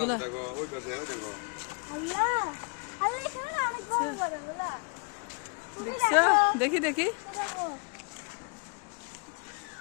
দেখছো? দেখি দেখি।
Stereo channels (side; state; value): right; quieter; 36.1 dB